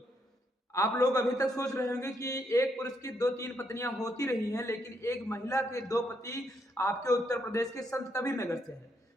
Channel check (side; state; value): both; normal; correlation 0.76